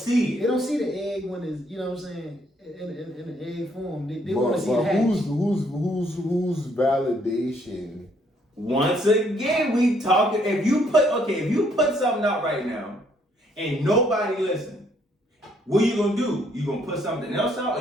it. They don't see the egg when it's, you know what I'm saying, in the egg form. They want to see it hatch. Who's validation? Once again, we talking. If you put something out right now, and nobody listen, what you gonna do? You gonna put something else out,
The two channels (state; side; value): normal; both; correlation 0.68